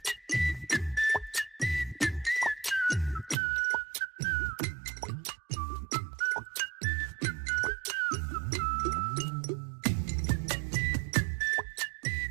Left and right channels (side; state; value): left; drops out; at 3.4 s